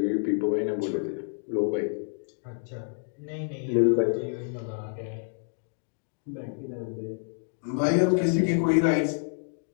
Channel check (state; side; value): silent; right; digital silence